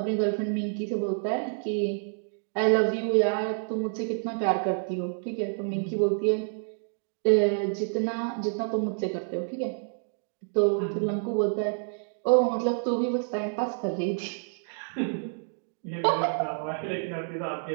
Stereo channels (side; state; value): left; silent; digital silence